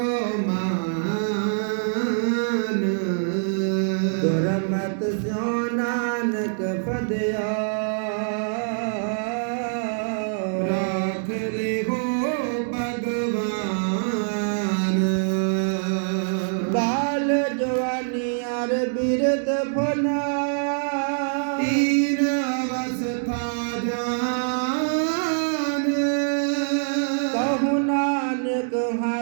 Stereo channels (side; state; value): left; silent; digital silence